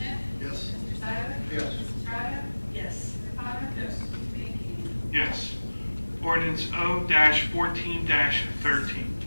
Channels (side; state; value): both; inverted; correlation -1.00